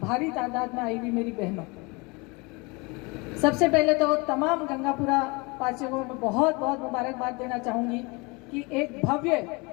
भारी तादाद में आई हुई मेरी बहनों, सबसे पहले तो तमाम गंगापुरा वासियों को मैं बहुत बहुत मुबारकबाद देना चाहूंगी कि एक भव्य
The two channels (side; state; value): right; quieter; 27.5 dB